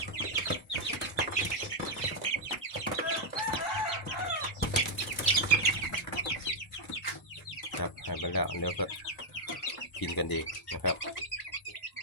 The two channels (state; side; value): normal; both; correlation -0.03